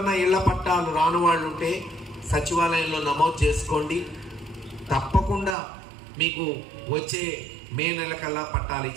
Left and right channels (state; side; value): drops out; left; at 5.6 s